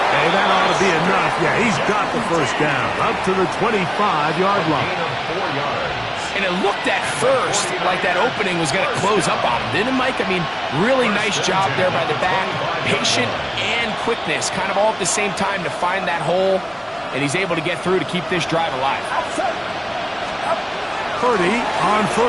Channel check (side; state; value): both; identical; correlation 1.00